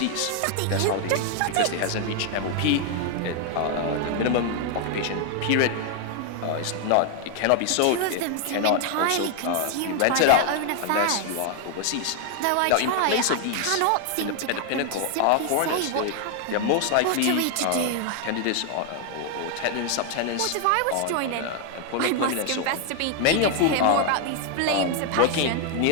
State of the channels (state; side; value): different; both; correlation 0.00